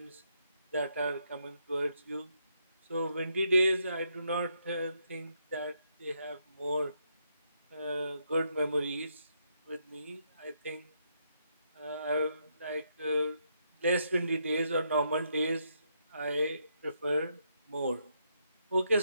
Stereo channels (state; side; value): inverted; both; correlation -0.77